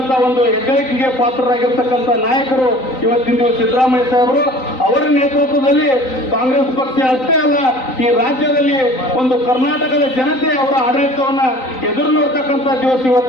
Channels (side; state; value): right; late; 3.9 ms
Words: ಒಂದು ಹೆಗ್ಗಳಿಕೆಗೆ ಪಾತ್ರರಾಗಿರ್ತಕ್ಕಂಥ ನಾಯಕರು ಇವತ್ತಿನ ದಿವಸ ಸಿದ್ದರಾಮಯ್ಯ ಸಾಹೇಬರು. ಅವರ ನೇತೃತ್ವದಲ್ಲಿ ಕಾಂಗ್ರೆಸ್ ಪಕ್ಷ ಅಷ್ಟೇ ಅಲ್ಲ, ಈ ರಾಜ್ಯದಲ್ಲಿ ಒಂದು ಕರ್ನಾಟಕದ ಜನತೆ ಅವರ ಆಡಳಿತವನ್ನ ಎದುರು ನೋಡ್ತಕ್ಕಂಥ ದಿವಸ